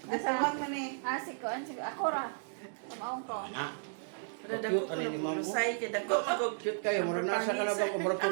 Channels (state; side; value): silent; left; digital silence